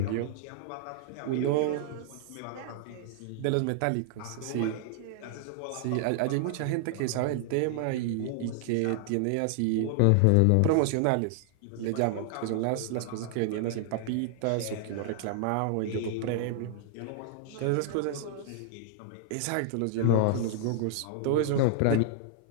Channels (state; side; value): different; both; correlation -0.01